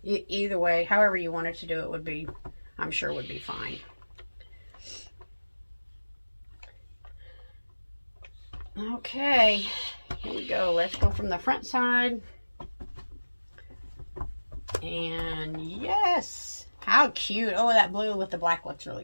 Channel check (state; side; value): inverted; both; correlation -1.00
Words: either way, however you wanted to do it would be, I'm sure would be fine. Okay, here we go. Let's go from the front side. And yes, how cute. Oh, that blue with the black looks really